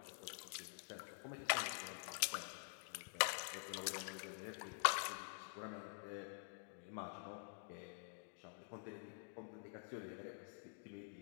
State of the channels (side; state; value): right; silent; digital silence